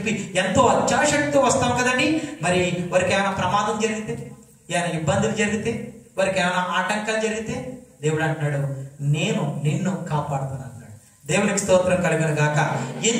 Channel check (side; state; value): both; identical; correlation 1.00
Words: ఎంతో అత్యాశక్తితో వస్తాం కదండి. మరి వారికి ఏమైనా ప్రమాదం జరిగితే, ఏమైనా ఇబ్బందులు జరిగితే, వారికి ఏమైనా ఆటంకాలు జరిగితే దేవుడు అంటున్నాడు, నేను నిన్ను కాపాడుతాను అన్నాడు. దేవునికి స్తోత్రం కలుగును గాక.